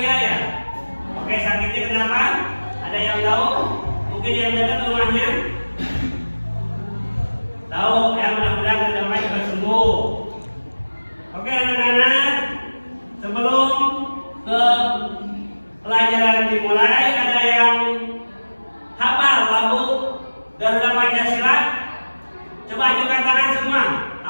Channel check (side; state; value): both; inverted; correlation -1.00